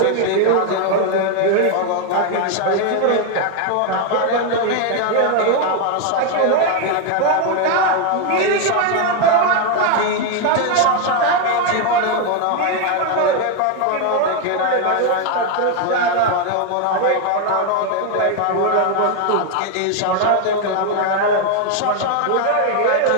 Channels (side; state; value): both; different; correlation 0.01